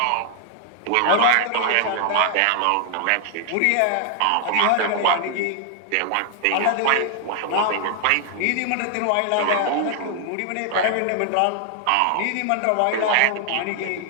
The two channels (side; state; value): both; different; correlation 0.00